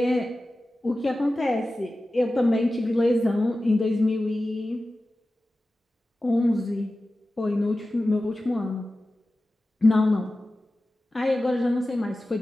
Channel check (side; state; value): both; normal; correlation 0.95